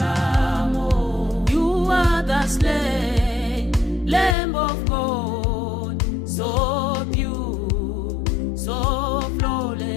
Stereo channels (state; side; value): drops out; right; at 4.4 s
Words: You are the slain Lamb of God, so pure, so